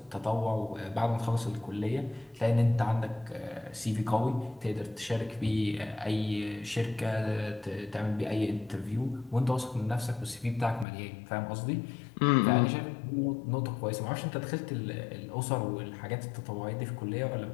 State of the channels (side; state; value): right; drops out; at 10.9 s